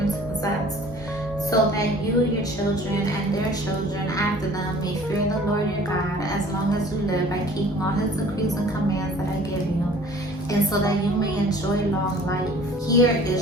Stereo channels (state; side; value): normal; both; correlation 0.50